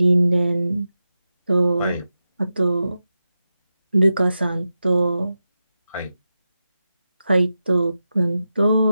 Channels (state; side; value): inverted; both; correlation -0.91